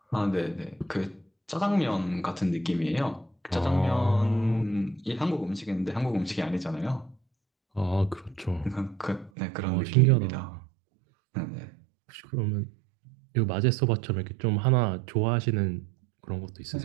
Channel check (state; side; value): drops out; left; at 9.3 s